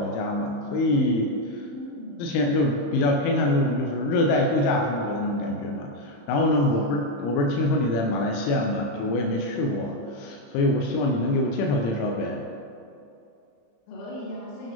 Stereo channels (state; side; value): late; right; 35 ms